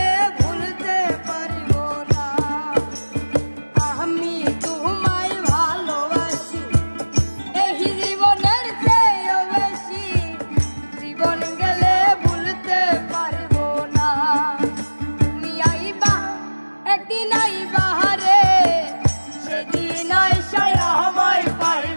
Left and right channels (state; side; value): inverted; both; correlation -1.00